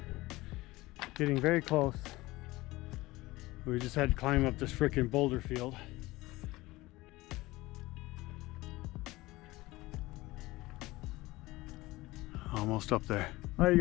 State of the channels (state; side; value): quieter; right; 19.6 dB